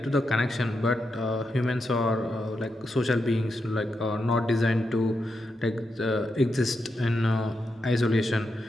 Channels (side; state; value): both; normal; correlation 0.85